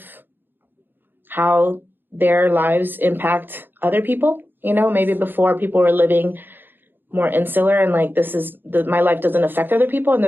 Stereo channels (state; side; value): late; left; 0.097 ms